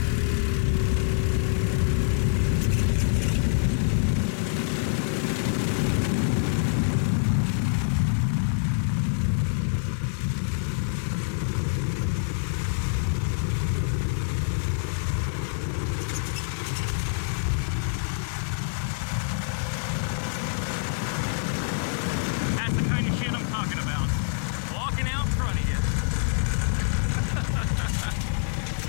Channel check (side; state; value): right; silent; digital silence